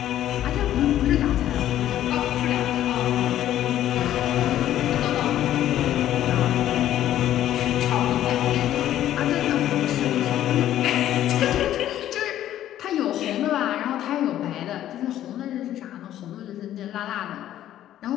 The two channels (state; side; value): quieter; right; 12.3 dB